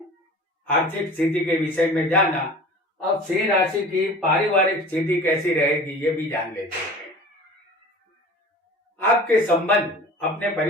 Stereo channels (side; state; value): both; normal; correlation 0.41